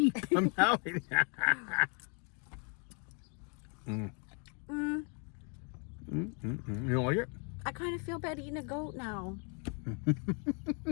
I'm telling you. You don't like it? I kind of feel bad eating a goat now.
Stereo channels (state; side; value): quieter; right; 38.7 dB